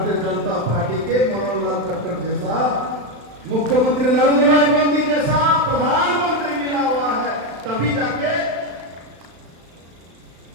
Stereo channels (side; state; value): left; late; 35 ms